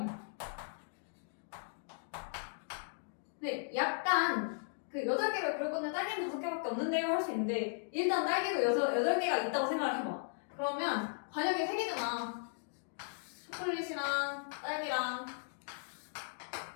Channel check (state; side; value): silent; right; digital silence